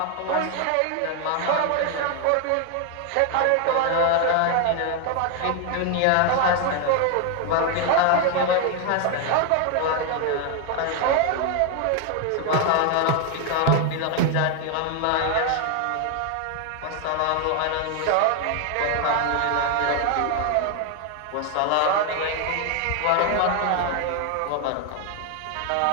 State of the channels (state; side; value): different; both; correlation 0.01